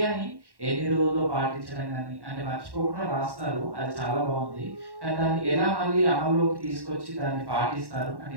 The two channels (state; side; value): late; left; 1.1 ms